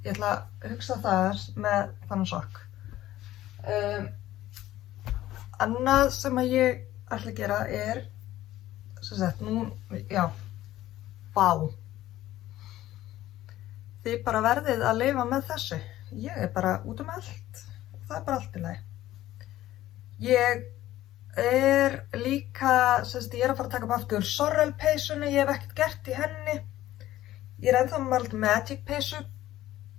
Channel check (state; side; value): quieter; right; 14.5 dB